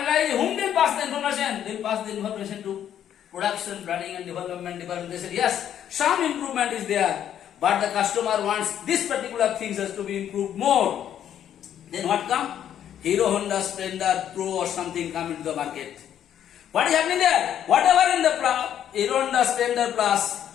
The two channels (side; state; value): right; quieter; 10.1 dB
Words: whom they pass the information? They pass the information to production planning and development department. They said, yes, some improvement is there, but the customer wants this particular things has to be improved more. Then what come? Hero Honda Splendor Pro or something come into the market. What is happening there? Whatever in the Hero Honda Splendor Plus,